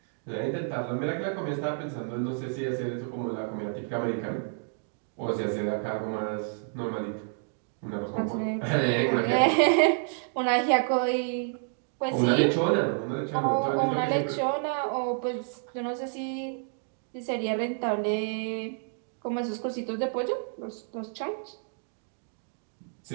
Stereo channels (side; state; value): left; silent; 58 dB below the other